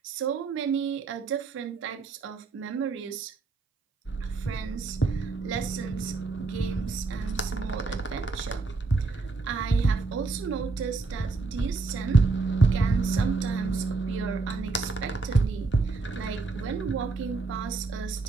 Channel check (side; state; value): left; quieter; 3.9 dB